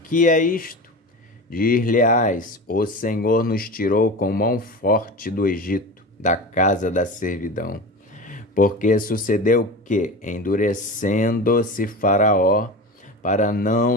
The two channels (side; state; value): both; normal; correlation 0.29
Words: que é isto? Dir-lhe-ás: o Senhor nos tirou com mão forte do Egito, da casa da servidão. Porque sucedeu que, endurecendo-se Faraó, para não